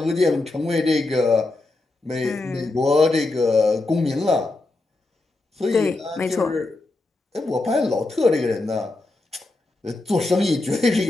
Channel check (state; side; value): quieter; right; 3.1 dB